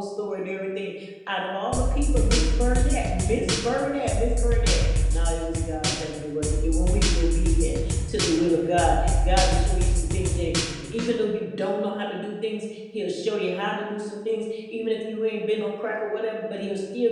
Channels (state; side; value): identical; both; correlation 1.00